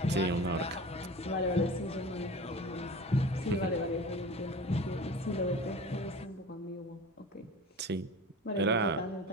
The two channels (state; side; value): normal; both; correlation 0.36